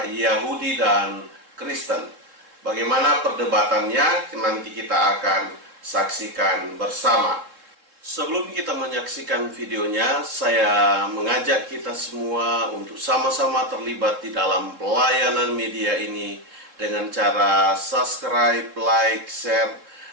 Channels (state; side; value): late; left; 3.6 ms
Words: Yahudi dan Kristen. Bagaimana perdebatannya nanti kita akan saksikan bersama. Sebelum kita menyaksikan videonya, saya mengajak kita semua untuk sama-sama terlibat di dalam pelayanan media ini dengan cara subscribe, like, share,